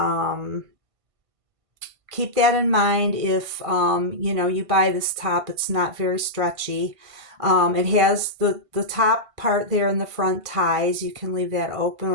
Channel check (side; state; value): left; late; 1.5 ms